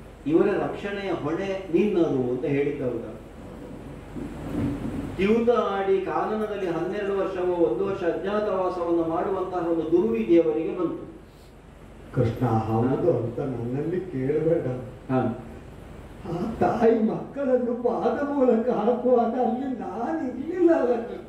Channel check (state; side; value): identical; both; correlation 1.00